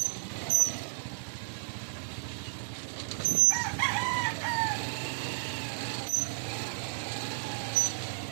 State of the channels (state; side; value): silent; left; digital silence